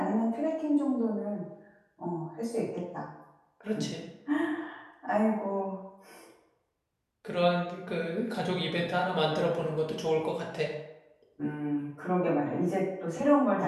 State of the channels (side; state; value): both; identical; correlation 1.00